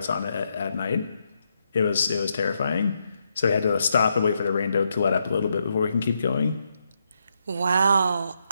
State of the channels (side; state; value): both; inverted; correlation -0.82